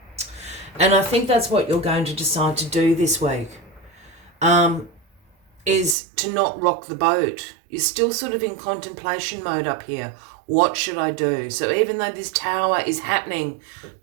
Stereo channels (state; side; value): drops out; left; at 6.0 s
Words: And I think that's what you're going to decide to do this week, is to not rock the boat. You're still sort of in contemplation mode up here. What should I do? So even though this Tower is happening